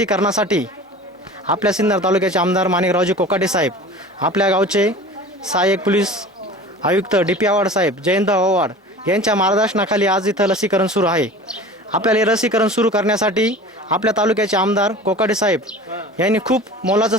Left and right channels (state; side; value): normal; both; correlation 0.39